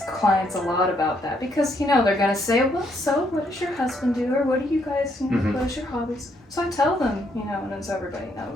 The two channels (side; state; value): both; normal; correlation 0.73